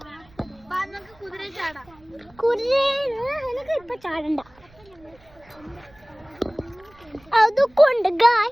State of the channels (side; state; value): right; noise; rumble, 28 dB below the sound